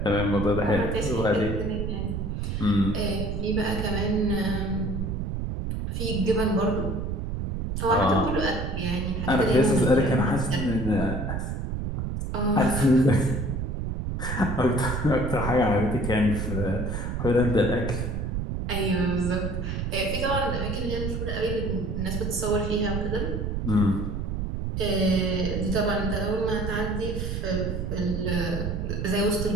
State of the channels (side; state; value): right; noise; rumble, 2 dB below the sound